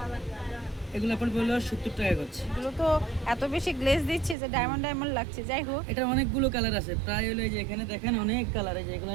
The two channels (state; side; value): drops out; left; at 4.4 s